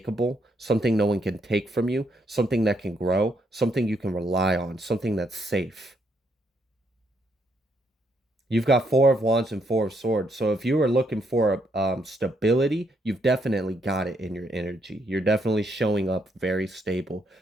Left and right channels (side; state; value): both; normal; correlation 0.75